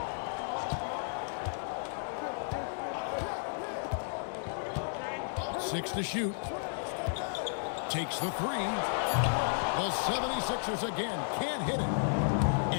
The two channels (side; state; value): right; silent; digital silence